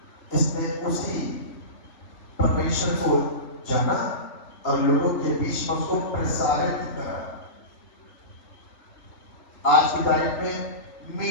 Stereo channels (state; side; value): late; right; 3.2 ms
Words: इसने उसी परमेश्वर को जाना और लोगों के बीच में उसको प्रसारित करा। आज की तारीख में